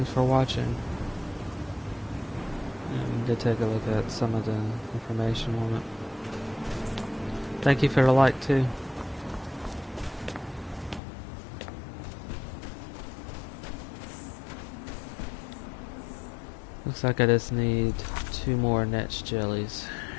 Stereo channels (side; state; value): right; drops out; at 11.0 s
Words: for watching. We did take a look at some of the information on it. Thank you for the like too. Looks like I just need 2 more netch jellies.